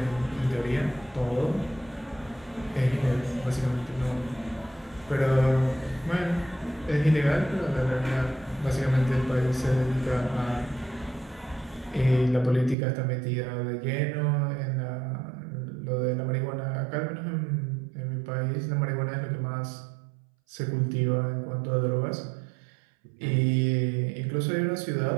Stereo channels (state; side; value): drops out; left; at 12.8 s